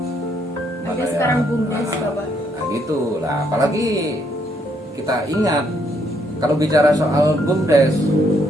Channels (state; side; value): normal; both; correlation 0.72